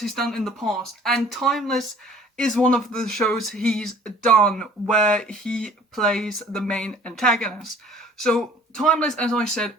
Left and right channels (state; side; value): normal; both; correlation 0.52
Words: in the past, and Timeless is one of the shows he's done where he plays the main antagonist. So Timeless, as I said,